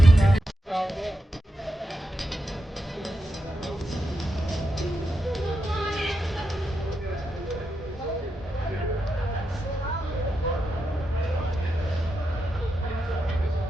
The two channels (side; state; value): both; normal; correlation 0.87